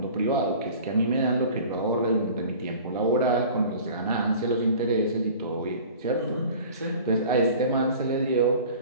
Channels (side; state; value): both; inverted; correlation -0.43